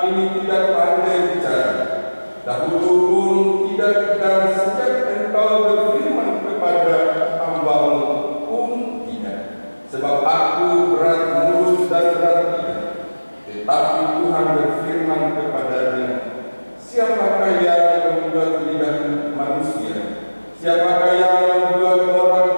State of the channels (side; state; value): both; inverted; correlation -1.00